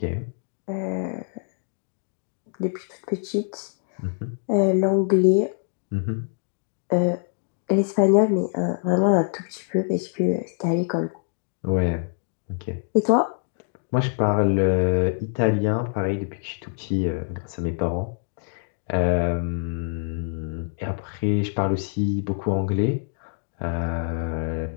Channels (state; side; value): silent; right; digital silence